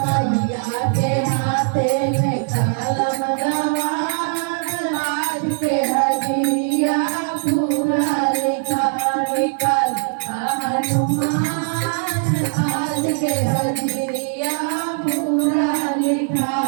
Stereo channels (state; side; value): silent; left; 55 dB below the other